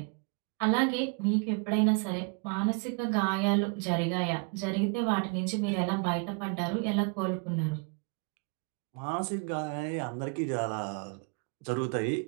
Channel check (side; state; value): left; quieter; 34.4 dB